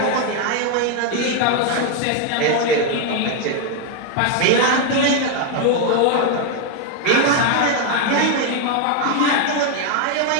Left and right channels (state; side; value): different; both; correlation 0.01